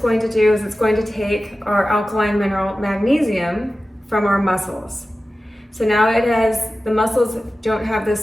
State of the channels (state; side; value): normal; both; correlation 0.95